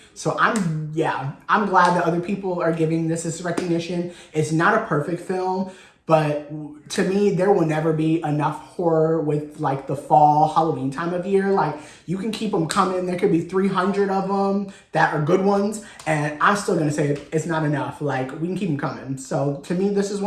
So I'm glad that other people are giving this recognition. It's not a perfect film, but to me, there will never be enough horror with, like, the fall Halloween time of year. Like, you can keep them coming. There could be 300 of them that are good ones, and I'm still gonna say it's not enough. Like, we can keep them coming. So to me, this is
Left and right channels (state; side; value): identical; both; correlation 1.00